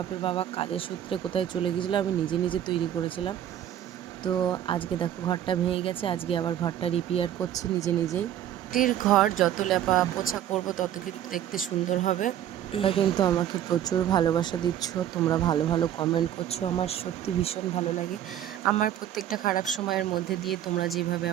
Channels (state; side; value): quieter; left; 11.1 dB